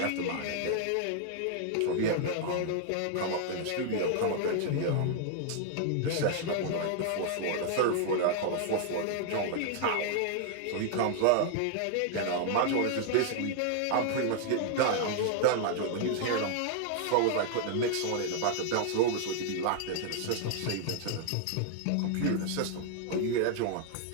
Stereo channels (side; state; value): both; different; correlation 0.00